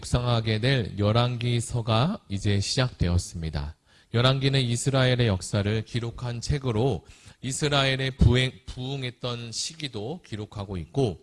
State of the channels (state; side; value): identical; both; correlation 1.00